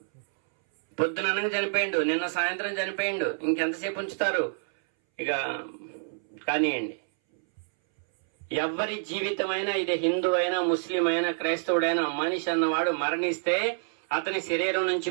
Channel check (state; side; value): silent; left; 60 dB below the other